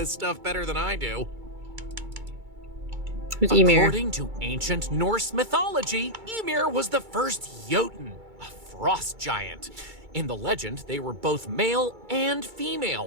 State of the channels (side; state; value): left; late; 2.3 ms